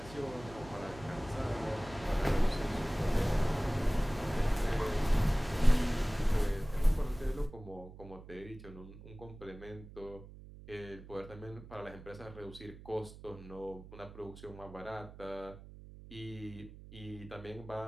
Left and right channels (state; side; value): noise; right; hum, 16 dB below the sound